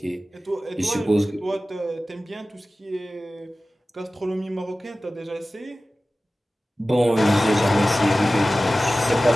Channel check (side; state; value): both; normal; correlation 0.96